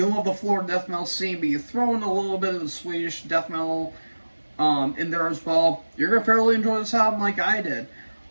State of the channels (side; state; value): both; inverted; correlation -1.00